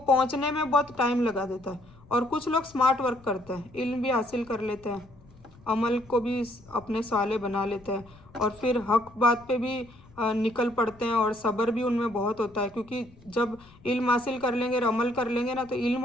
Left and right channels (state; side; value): noise; left; rumble, 25 dB below the sound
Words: में बहुत टाइम लगा देता है। और कुछ लोग स्मार्ट वर्क करते हैं, इल्म भी हासिल कर लेते हैं, अमल को भी अपने साले बना लेते हैं, और फिर हक बात पे भी निकल पड़ते हैं, और सब्र भी उनमें बहुत होता है, क्योंकि जब इल्म हासिल कर लेंगे और अमल कर लेंगे ना, तो इल्म